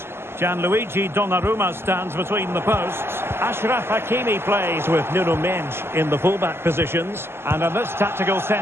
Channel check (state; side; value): late; left; 0.12 ms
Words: Gianluigi Donnarumma stands between the posts. Achraf Hakimi plays with Nuno Mendes in the fullback positions. And in this tactical